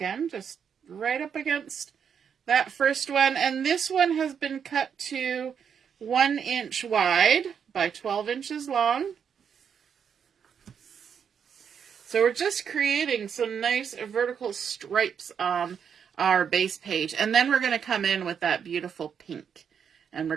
just right up against that first one. And this one has been cut to 1 inch wide by 12 inches long. So we're just creating some nice vertical stripes on our base page. And then we're going to come in with that beautiful pink. And we're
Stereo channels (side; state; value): left; quieter; 7.4 dB